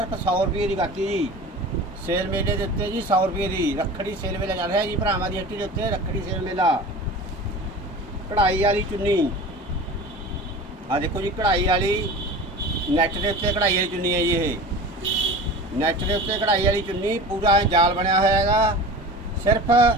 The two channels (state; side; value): normal; both; correlation 0.36